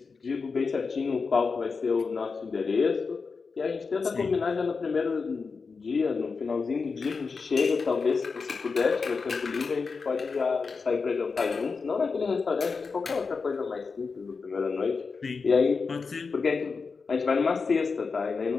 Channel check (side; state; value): right; quieter; 4.8 dB